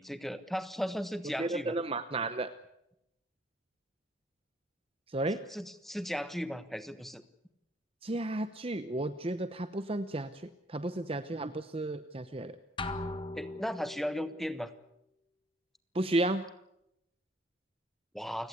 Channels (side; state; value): both; normal; correlation 0.63